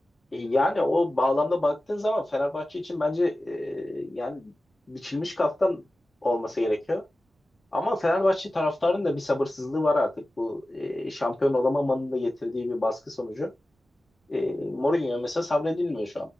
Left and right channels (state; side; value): normal; both; correlation 0.95